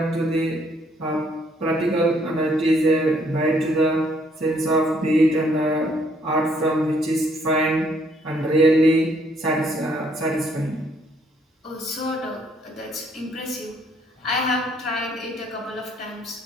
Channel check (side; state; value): both; normal; correlation 0.67